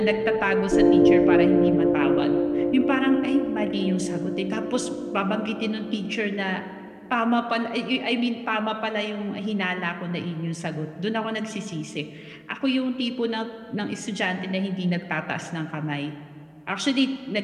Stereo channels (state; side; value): identical; both; correlation 1.00